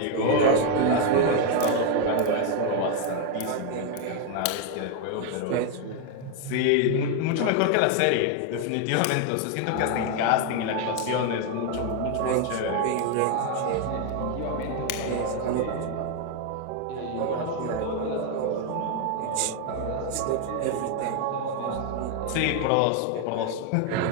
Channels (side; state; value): both; different; correlation 0.01